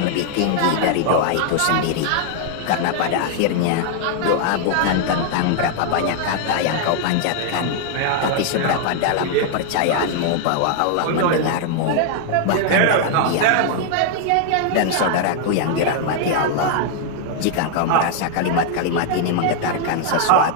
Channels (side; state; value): both; different; correlation 0.00